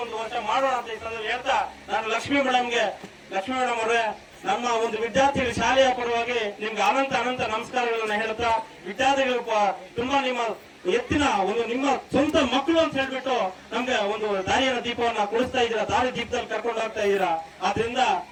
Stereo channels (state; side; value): identical; both; correlation 1.00